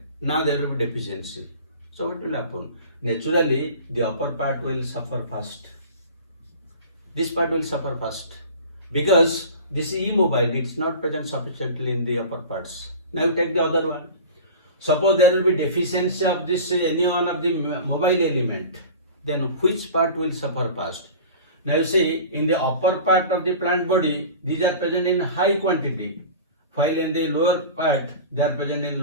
Now there will be deficiency. So what will happen? Naturally the upper part will suffer first. This part will suffer first because this is immobile. It's not present sufficiently in the upper parts. Now you take the other one. Suppose there will be deficiency of this any one of the mobile element, then which part will suffer first? Now you see, in the upper part of the plant body, these are present in high quantity, while in the lower part they are present in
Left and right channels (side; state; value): both; inverted; correlation -0.37